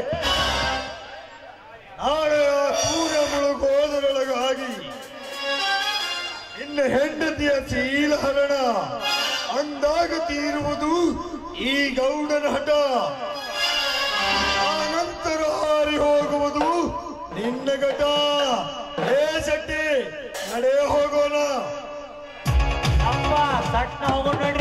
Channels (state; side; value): identical; both; correlation 1.00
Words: ನಾಳೆ ಆ ಸೂರ್ಯ ಮುಳುಗೋದರೊಳಗಾಗಿ ನಿನ್ನ ಹೆಂಡತಿಯ ಶೀಲಹರಣ ಅಂದಾಗ ತೀರುವುದು ಈ ಗೌಡನ ಹಠ. ಆ ನಂತರ ಹಾರಿ ಹೋಗುವುದು ನಿನ್ನ ಘಟ. ಹೇ ಶೆಟ್ಟಿ, ನಡೆ ಹೋಗೋಣ. ಅಪ್ಪ ಸಟ್ನ ಹೋಗೋಣ